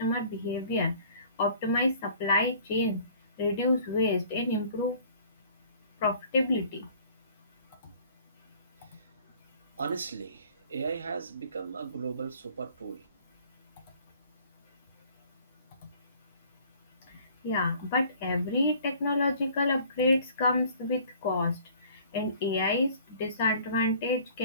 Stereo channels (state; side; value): inverted; both; correlation -0.53